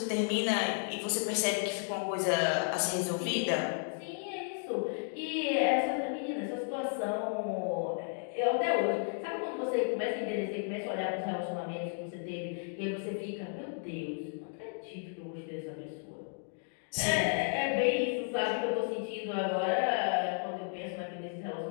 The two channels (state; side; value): silent; right; 55 dB below the other